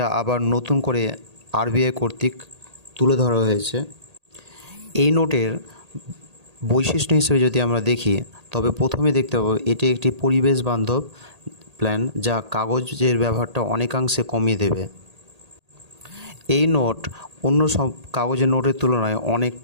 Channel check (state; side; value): late; left; 1.8 ms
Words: আবার নতুন করে আরবিআই কর্তৃক তুলে ধরা হয়েছে। এই নোটের বৈশিষ্ট্য হিসেবে যদি আমরা দেখি, তবে প্রথমে দেখতে পাবো এটি একটি পরিবেশ বান্ধব প্ল্যান, যা কাগজের ব্যবহারটা অনেকাংশে কমিয়ে দেবে। এই নোট অন্য সব কাগজের নোটের তুলনায়